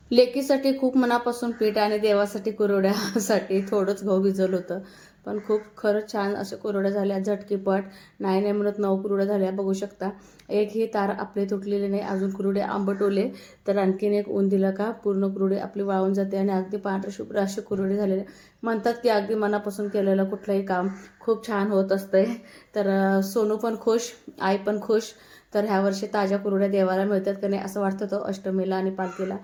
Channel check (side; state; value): both; identical; correlation 1.00